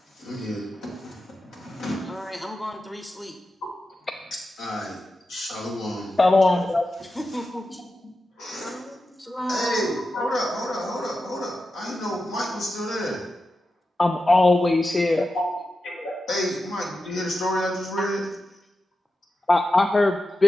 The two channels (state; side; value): normal; both; correlation 0.91